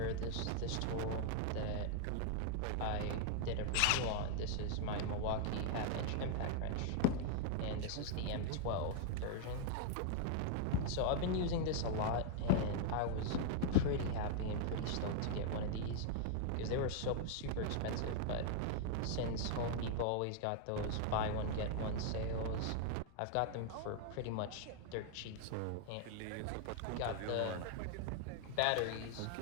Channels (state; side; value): different; both; correlation 0.00